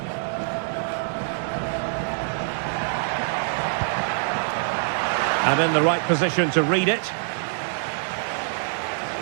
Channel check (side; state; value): left; silent; digital silence